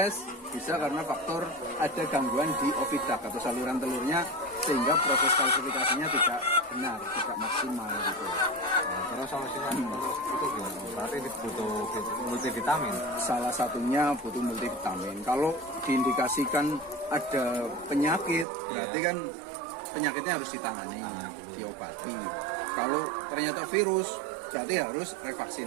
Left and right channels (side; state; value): left; drops out; at 18.4 s